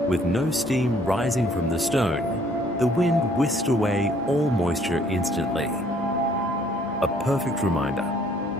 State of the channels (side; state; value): both; normal; correlation 0.61